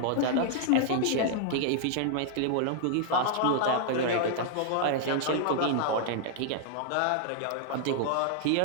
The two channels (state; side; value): different; both; correlation -0.01